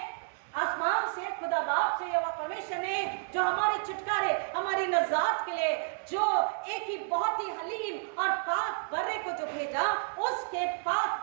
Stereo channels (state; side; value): silent; left; digital silence